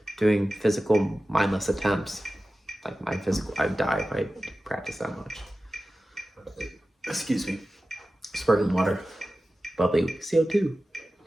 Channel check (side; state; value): both; normal; correlation 0.95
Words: doing physical mindless attempts. Like my physical, I'd die if I practice that much. Excuse me. Sparkling water. Bubbly CO2.